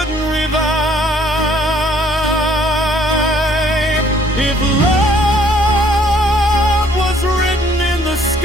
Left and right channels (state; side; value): normal; both; correlation 0.61